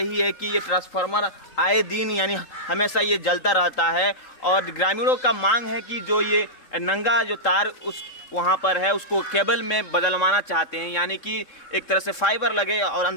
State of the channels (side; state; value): right; late; 3.8 ms